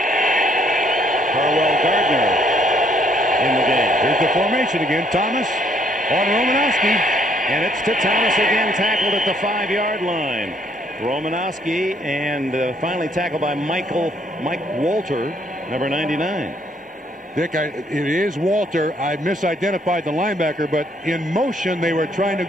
Carwell Gardner in the game. Here's the formation again. Thomas on Romanowski. And it's to Thomas again, tackled at the 5-yard line. Romanowski, and finally tackled by Mike Walter, number 99. Dick, it is Walter. I misidentified the linebacker, but in motion they were trying to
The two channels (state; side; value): normal; both; correlation 0.66